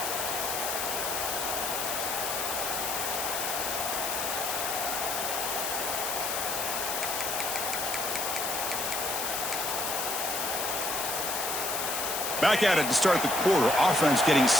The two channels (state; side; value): noise; left; hiss, 2 dB below the sound